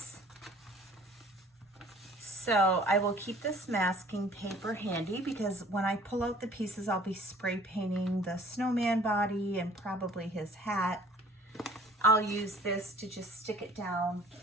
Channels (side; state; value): both; normal; correlation 0.52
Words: So I will keep this masking paper handy because when I pull out the pieces, I'll be spray painting the snowman body and probably his hat. I'll use this to just stick it down.